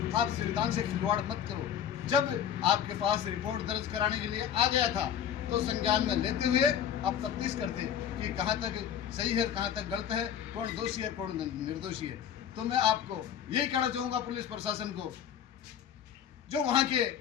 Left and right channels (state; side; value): quieter; right; 9.3 dB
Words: आप संविधान से खिलवाड़ मत करो। जब आपके पास रिपोर्ट दर्ज कराने के लिए आ गया था तो संज्ञान में लेते हुए आप तफ्तीश करते कि कहाँ तक सही है, कहाँ तक गलत है, कौन दोषी है, कौन निर्दोषी है। तो मैं आपको यही कहना चाहूँगा पुलिस प्रशासन को, जो वहाँ के